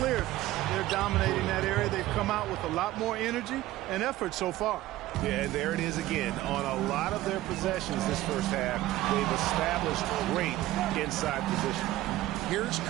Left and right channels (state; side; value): quieter; left; 16.0 dB